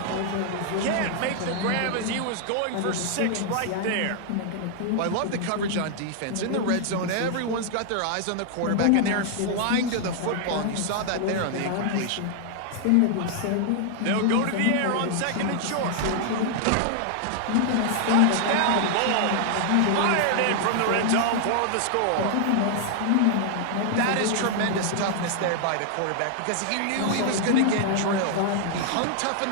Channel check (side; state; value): both; different; correlation 0.00